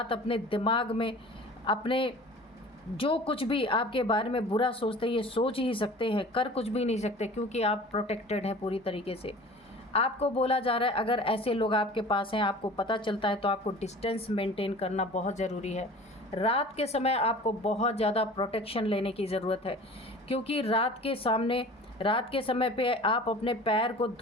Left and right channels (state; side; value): normal; both; correlation 0.42